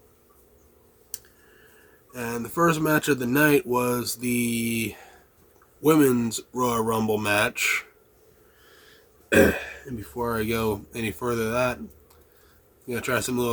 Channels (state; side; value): identical; both; correlation 1.00